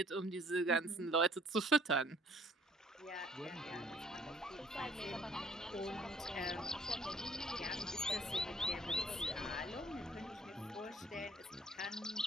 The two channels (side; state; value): both; normal; correlation 0.58